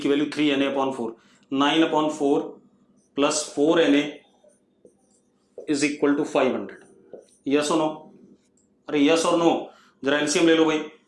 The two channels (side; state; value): both; identical; correlation 1.00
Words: की value 3NA upon 4, 9 upon 4 plus 4NA is equal to 500। Yes और नो? अरे यस और नो, जरा एलसीएम ले लो भाई।